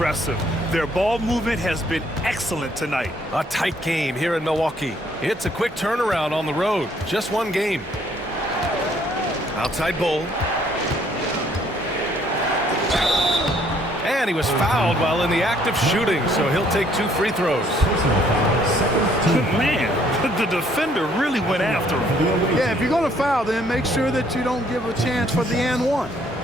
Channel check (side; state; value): both; normal; correlation 0.64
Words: Their ball movement has been excellent tonight. A tight game here in Milwaukee. It's a quick turnaround on the road. Just one game. Outside Bull. And he was fouled while in the act of shooting, so he'll take 2 free throws. Man, the defender really went after him. Yeah, if you're going to foul, then make sure that you don't give a chance for the and one.